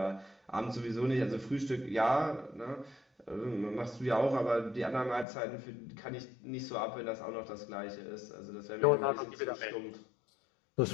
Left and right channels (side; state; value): right; drops out; at 5.2 s